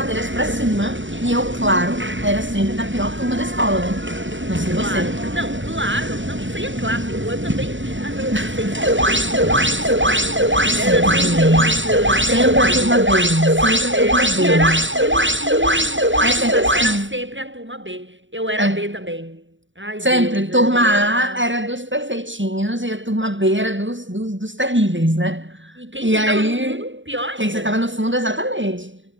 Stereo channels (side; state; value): left; late; 0.55 ms